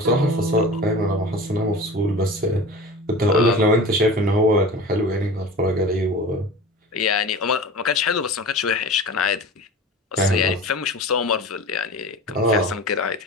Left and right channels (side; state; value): both; normal; correlation 0.35